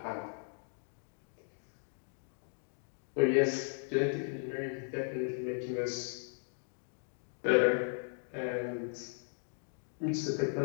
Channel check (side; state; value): right; silent; 53 dB below the other